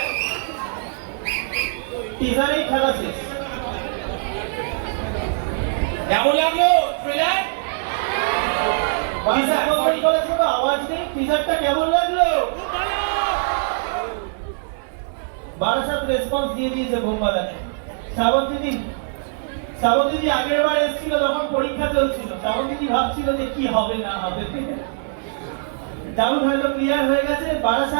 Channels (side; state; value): left; silent; digital silence